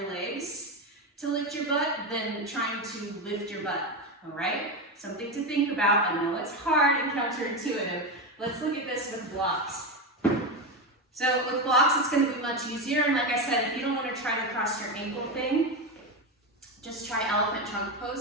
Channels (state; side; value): normal; both; correlation 0.15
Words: legs to lift your butt than trying to lift your butt, all right? Something to think about. I know it's hard and counterintuitive. Let's look at this with blocks. So with blocks, it's gonna be much easier. And like I said, if you don't wanna try the cross your ankle thing, just try elephant trunk